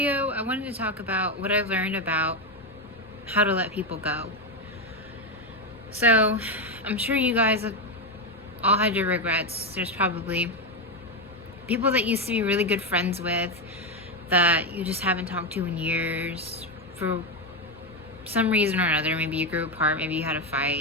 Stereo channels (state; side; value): normal; both; correlation 0.09